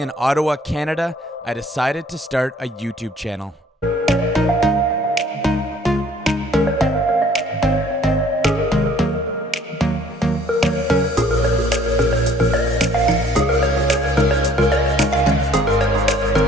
Ottawa, Canada, I decided to start a YouTube channel.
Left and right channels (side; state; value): both; normal; correlation 0.58